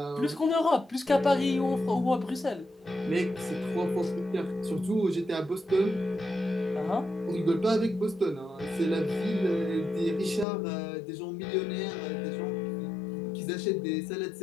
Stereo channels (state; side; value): drops out; right; at 10.5 s